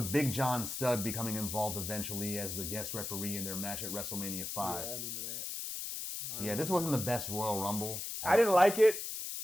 Big John Studd becoming involved eventually as the guest referee in their match at WrestleMania 5. Yeah, I remember that. Yeah, this wasn't the best Royal Rumble. I didn't like it,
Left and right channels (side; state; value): left; noise; hiss, 5 dB below the sound